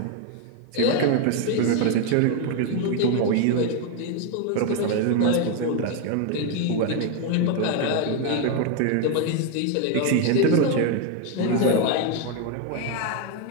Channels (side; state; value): both; different; correlation 0.01